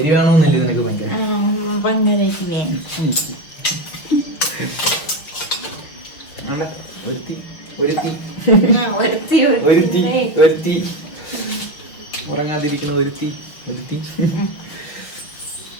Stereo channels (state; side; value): late; right; 6.6 ms